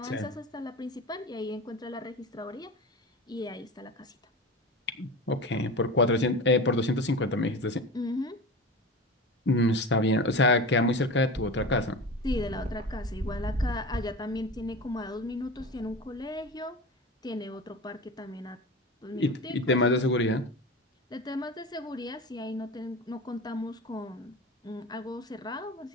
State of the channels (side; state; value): both; normal; correlation 0.29